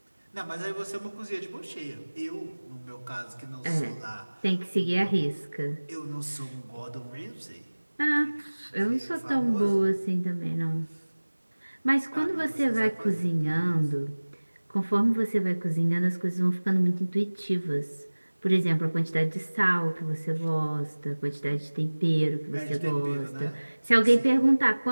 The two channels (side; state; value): both; inverted; correlation -1.00